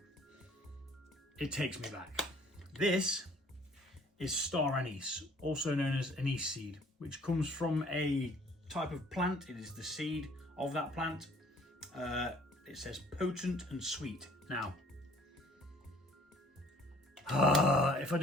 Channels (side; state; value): both; normal; correlation 0.56